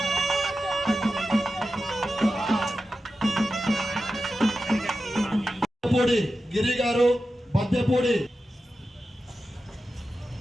గిరి గారు, బద్దెపూడి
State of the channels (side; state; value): both; normal; correlation 0.92